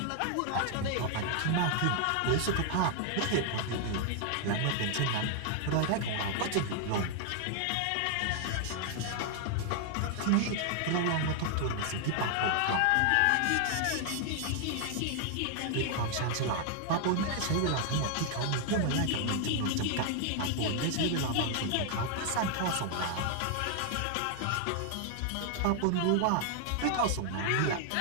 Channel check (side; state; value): both; different; correlation 0.00